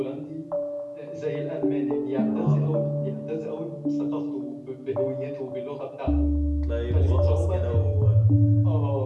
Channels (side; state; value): both; identical; correlation 1.00